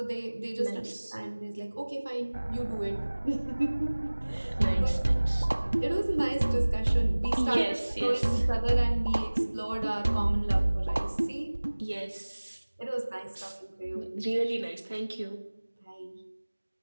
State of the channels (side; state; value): both; inverted; correlation -1.00